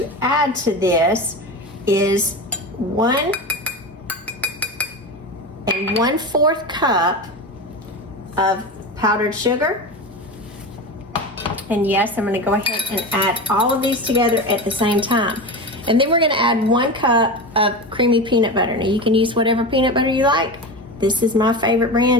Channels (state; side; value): normal; both; correlation 0.24